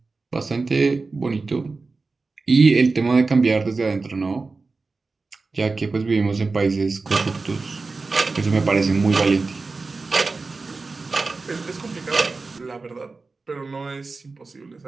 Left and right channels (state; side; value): quieter; left; 3.9 dB